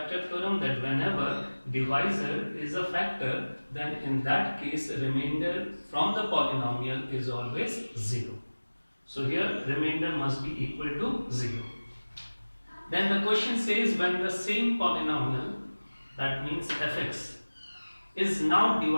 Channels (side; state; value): both; inverted; correlation -1.00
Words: theorem that whenever divisor is a factor, then in that case remainder from the polynomial is always 0. So here remainder must be equal to 0. Then the question says when the same polynomial, that means fx, is now